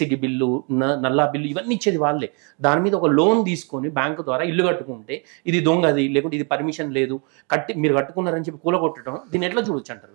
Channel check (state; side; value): quieter; left; 35.3 dB